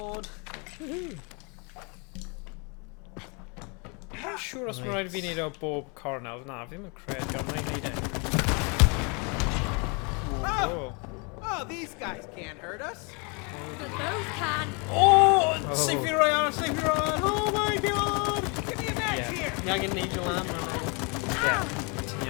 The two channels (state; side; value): quieter; right; 33.0 dB